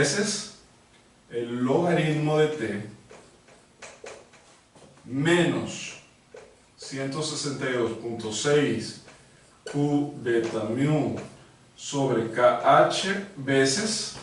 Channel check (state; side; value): identical; both; correlation 1.00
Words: el logaritmo de t menos 162.6 Q beta mu sobre KH veces